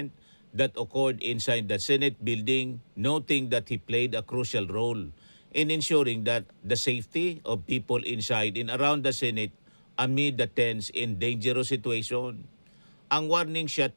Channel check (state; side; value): inverted; both; correlation -1.00